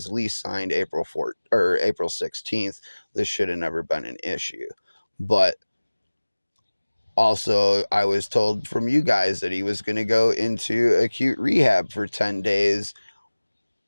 lease signed April 4th or April 16th. This should have never been an issue. But also, I was told from you guys that he was going to go into acute rehab for 10 days.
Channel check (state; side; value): inverted; both; correlation -1.00